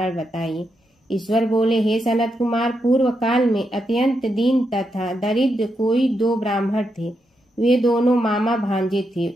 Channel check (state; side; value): normal; both; correlation 0.83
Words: बताइए। ईश्वर बोले, हे सनत कुमार, पूर्व काल में अत्यंत दीन तथा दरिद्र कोई 2 ब्राह्मण थे। वे दोनों मामा भांजे थे।